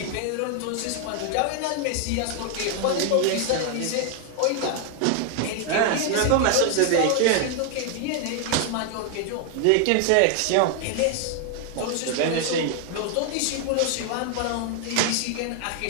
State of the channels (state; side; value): different; both; correlation 0.00